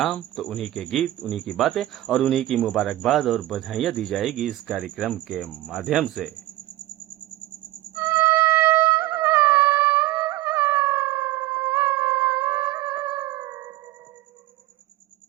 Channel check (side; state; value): left; quieter; 16.1 dB